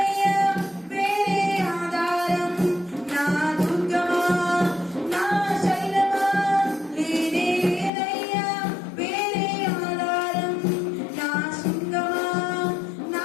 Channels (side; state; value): right; drops out; at 7.9 s